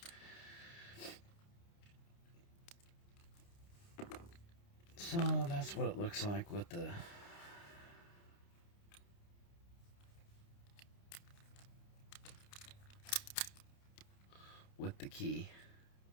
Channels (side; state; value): right; late; 29 ms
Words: So that's what it looks like with the key.